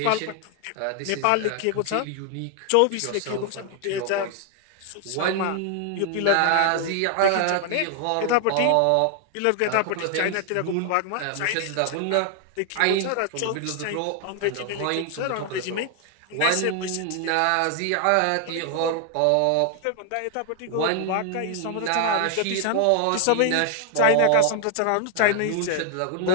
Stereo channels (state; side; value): different; both; correlation 0.00